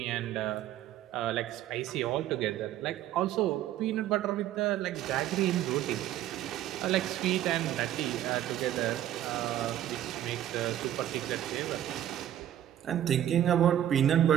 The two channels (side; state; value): left; quieter; 11.9 dB